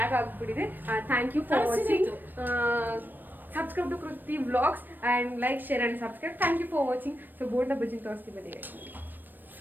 ಆಗಿಬಿಟ್ಟಿದೆ. Thank you for watching. Subscribe to Kruti Vlogs and like, share and subscribe. Thank you for watching. So bonda bajji ತೋರಿಸ್ತೀವಿ ಬನ್ನಿ.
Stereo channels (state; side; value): late; left; 0.092 ms